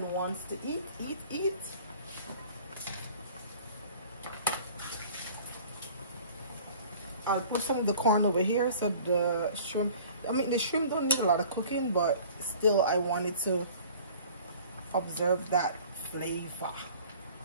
wants to eat. I'll put some of the corn over here so the shrimp, I mean the shrimp don't need a lot of cooking, but still I wanted to observe that flavor.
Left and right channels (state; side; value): inverted; both; correlation -0.47